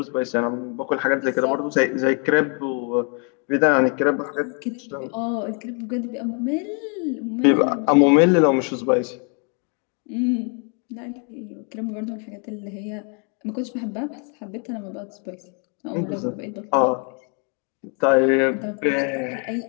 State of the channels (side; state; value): right; quieter; 38.7 dB